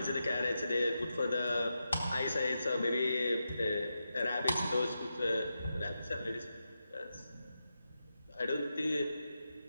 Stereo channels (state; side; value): inverted; both; correlation -0.88